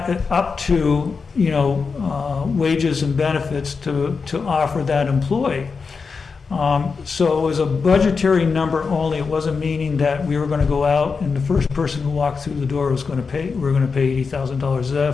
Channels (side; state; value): right; quieter; 5.0 dB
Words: up to, wages and benefits to offer that employee. So it was a budgetary number only. It wasn't meaning that we were going to go out and the first person who walked through the door was going to pay, we're going to pay $80,000. Is that a